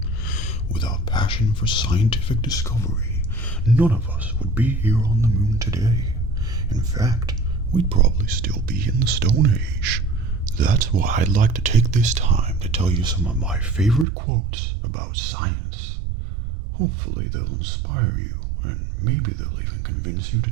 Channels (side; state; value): left; drops out; at 14.1 s